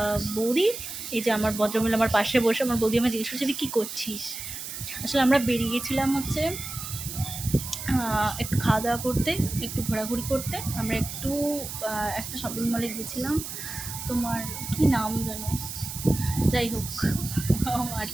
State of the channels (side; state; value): right; noise; hiss, 8 dB below the sound